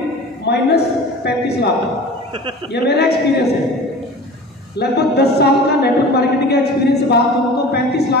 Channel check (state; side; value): normal; both; correlation 0.39